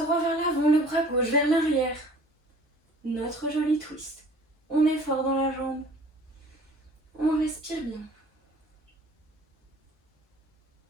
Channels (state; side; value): normal; both; correlation 0.50